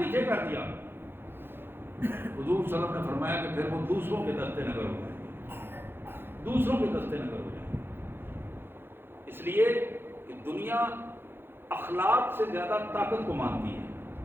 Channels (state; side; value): late; left; 0.10 ms